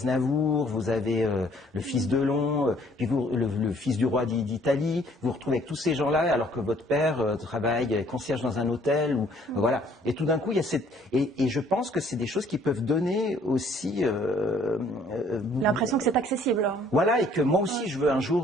vous avez le fils Delon, puis le fils du roi d'Italie, vous vous retrouvez avec tous ces gens-là, alors que votre père travaille concierge dans un hôtel, ou voilà. Et tout d'un coup, il y a cette... Et je pense que c'est des choses qui peuvent donner aussi... l'impression que c'est accessible. Voilà, et que moi aussi je veux un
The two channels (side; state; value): both; normal; correlation 0.60